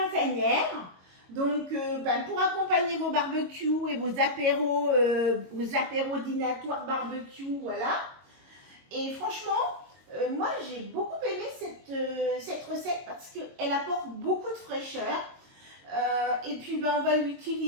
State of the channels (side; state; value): left; late; 22 ms